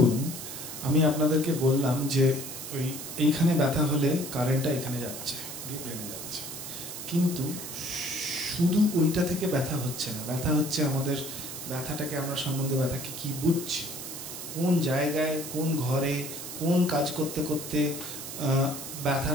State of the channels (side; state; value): right; noise; hiss, 9 dB below the sound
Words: আমি আপনাদেরকে বললাম যে ওই এইখানে ব্যথা হলে কারেন্টটা এখানে যাচ্ছে, ব্রেনে যাচ্ছে, কিন্তু শুধু ওইটা থেকে ব্যথা হচ্ছে না, ব্যথা হচ্ছে আমাদের ব্যথাটাকে আমরা সম্বন্ধে ব্যথাকে কি বুঝছি, কোন জায়গায়, কোন ঘরে, কোন কাজ করতে করতে